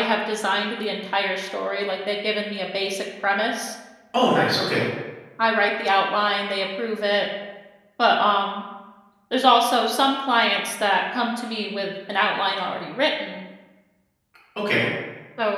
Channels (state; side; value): identical; both; correlation 1.00